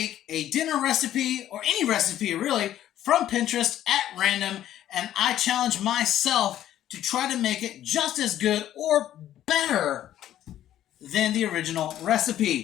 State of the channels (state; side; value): quieter; right; 12.1 dB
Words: a dinner recipe, or any recipe really, from Pinterest at random, and I challenge myself to try to make it just as good or better than the original